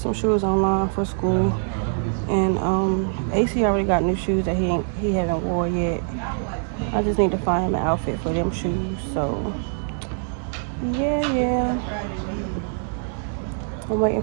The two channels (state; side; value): silent; left; 63 dB below the other